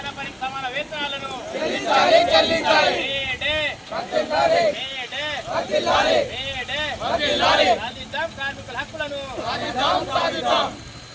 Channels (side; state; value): both; identical; correlation 1.00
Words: పనికి సమాన వేతనాలను మేడే సాధిద్దాం, కార్మికుల హక్కులను.